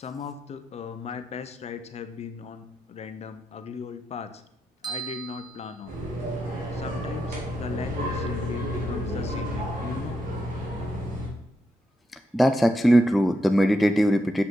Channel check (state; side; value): normal; both; correlation 0.84